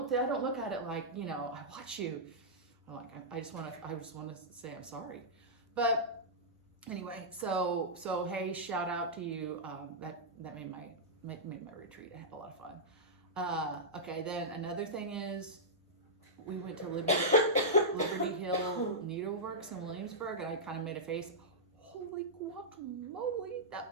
look at it like, you know, I watch you. I just want to say I'm sorry. But anyway, so hey, shout out to you. That made my retreat. I had a lot of fun. Okay, then another thing is we went to Liberty Hill Needleworks in Williamsburg, and I kind of made a face. Holy guacamole,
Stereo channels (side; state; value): both; normal; correlation -0.12